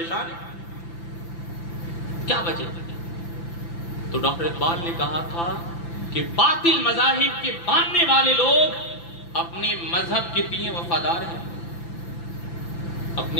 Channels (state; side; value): late; right; 5.9 ms